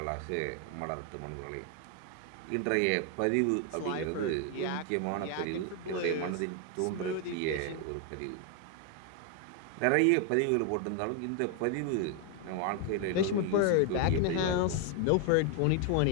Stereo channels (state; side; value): different; both; correlation 0.00